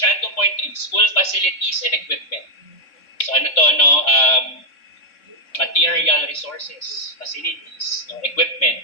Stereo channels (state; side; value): late; right; 3.6 ms